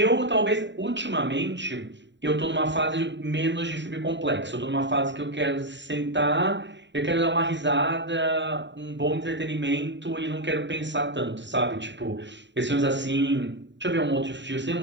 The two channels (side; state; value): left; late; 0.52 ms